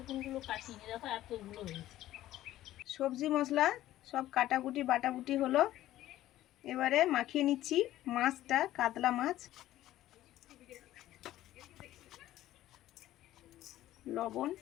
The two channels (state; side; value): quieter; right; 14.2 dB